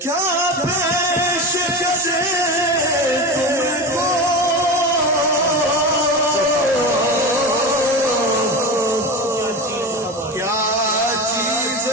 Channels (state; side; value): normal; both; correlation 0.24